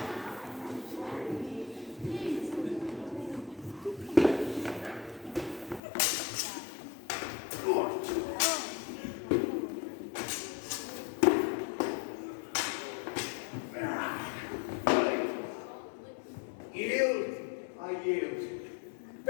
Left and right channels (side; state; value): right; drops out; at 5.8 s